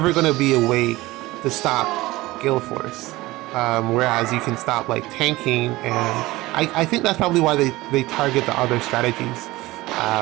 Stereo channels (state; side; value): quieter; left; 19.3 dB